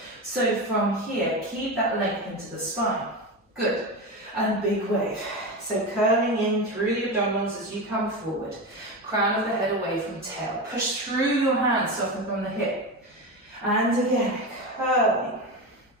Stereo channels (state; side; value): normal; both; correlation 0.20